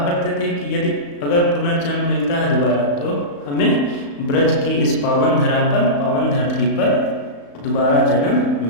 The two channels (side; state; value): right; late; 35 ms